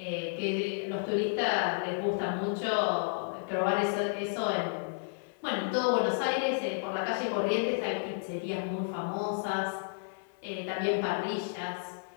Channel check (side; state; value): right; silent; 56 dB below the other